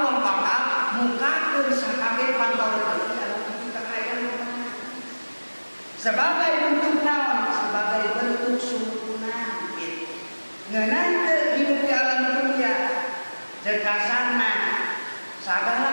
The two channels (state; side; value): inverted; both; correlation -1.00